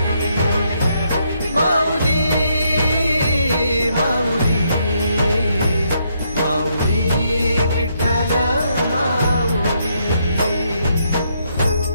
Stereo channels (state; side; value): inverted; both; correlation -0.75